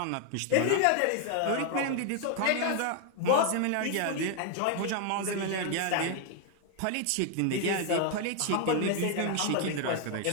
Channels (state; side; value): different; both; correlation 0.00